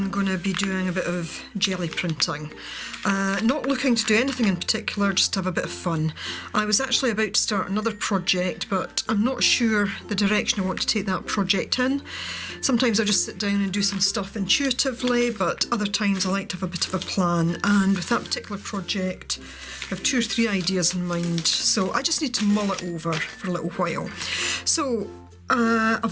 going to be doing a bit of jelly printing. Not looking to do anything in particular, just to have a bit of fun. I was actually about to start another project, but I'm not sure the direction I want to take that project in. Sometimes I just sit down and do some stuff intuitively, but other times I like to have a bit of a plan, and with that particular project I have 2 or 3 ideas in mind, so I just need to mull it over for a little while. So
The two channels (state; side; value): identical; both; correlation 1.00